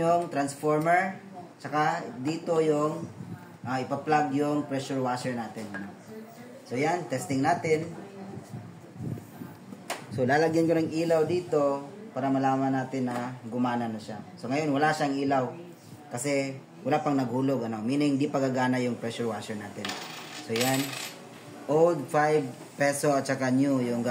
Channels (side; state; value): both; identical; correlation 1.00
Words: transformer. Saka dito yung ipa-plug yung pressure washer natin. So yan, testing natin. So lalagyan ko ng ilaw dito para malaman natin na gumana na siya. So ngayon wala siyang ilaw kasi wala pang naghulog, meaning di pa gagana yung pressure washer natin. So yan, old 5 peso at saka new yung